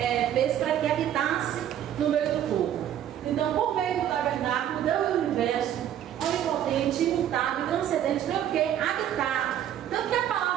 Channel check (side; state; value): left; quieter; 10.7 dB